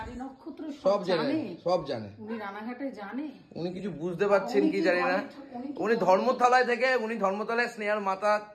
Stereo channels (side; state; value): both; identical; correlation 1.00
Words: সব জানে, সব জানে, উনি কিছু বুঝতে পারছেন কি জানি না। উনি ধর্মতলায় থেকে ধর্মতলায় স্নেহার মাথা